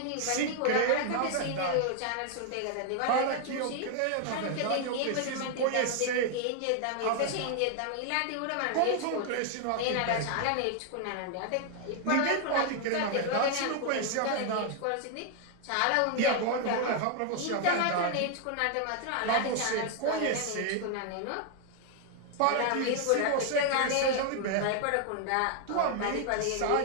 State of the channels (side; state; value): both; different; correlation 0.00